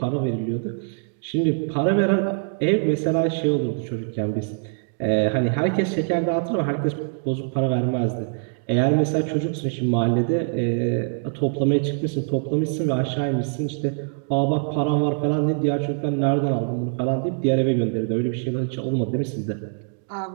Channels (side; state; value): left; silent; 63 dB below the other